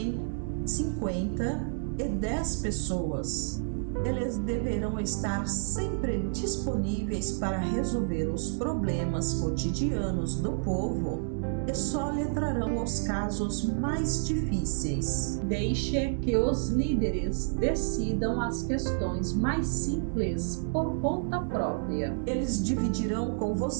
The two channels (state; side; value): silent; left; digital silence